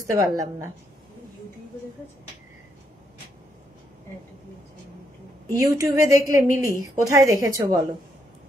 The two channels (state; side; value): normal; both; correlation 0.76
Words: পারলাম না। ইউটিউবে দেখলে মিলি, কোথায় দেখেছো বলো।